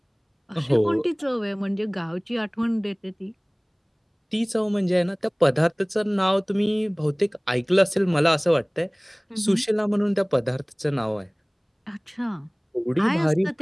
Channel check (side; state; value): both; identical; correlation 1.00